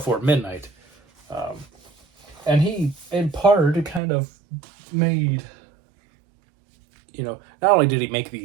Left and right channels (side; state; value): left; drops out; at 4.0 s